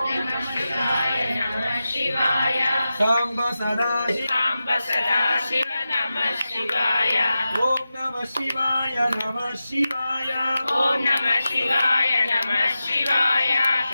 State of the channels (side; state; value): both; inverted; correlation -0.92